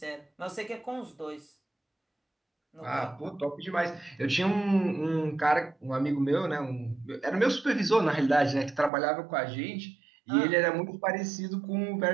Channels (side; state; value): left; drops out; at 8.9 s